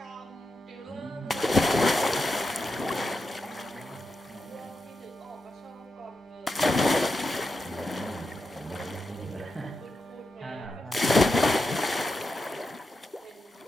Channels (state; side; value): normal; both; correlation 0.88